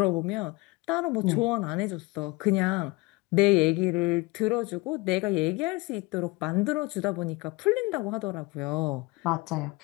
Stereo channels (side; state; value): right; quieter; 23.5 dB